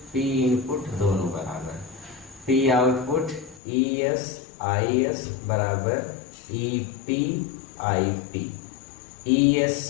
P इनपुट दोनों बराबर। P आउटपुट ES IS बराबर EP IP। ES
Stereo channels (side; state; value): right; drops out; at 3.6 s